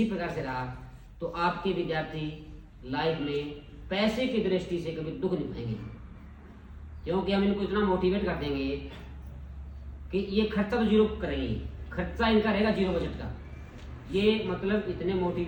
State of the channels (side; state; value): both; identical; correlation 1.00